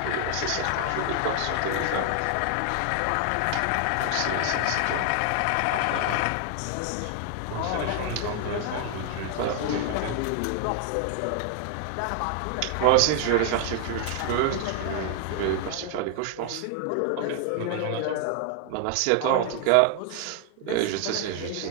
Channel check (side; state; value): both; different; correlation 0.00